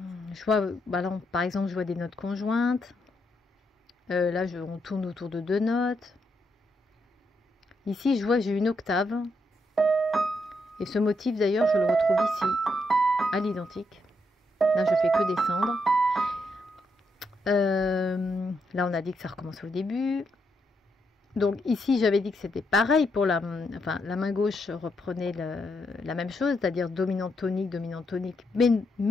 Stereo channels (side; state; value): both; normal; correlation 0.79